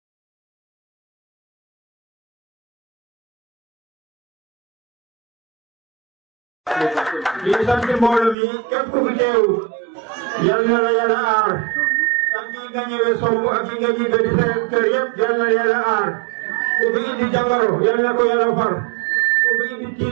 di sant mbooloo mi képp ku fi teew yal na la yàlla aar ak ñi nga ñëwee somb ak ñi nga ñibbe di seen kër yëpp yal na yàlla aar ku fi indi jàngoro yal na ko yàlla far ku fi indi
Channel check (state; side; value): drops out; left; at 8.3 s